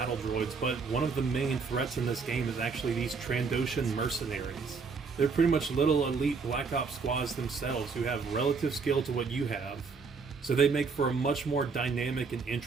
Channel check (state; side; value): quieter; left; 4.9 dB